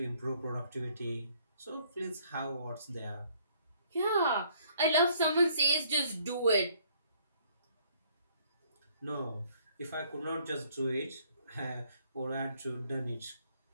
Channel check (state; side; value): inverted; both; correlation -0.62